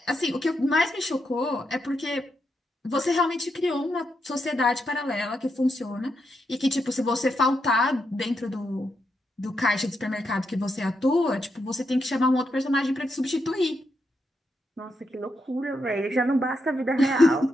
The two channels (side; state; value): both; normal; correlation 0.82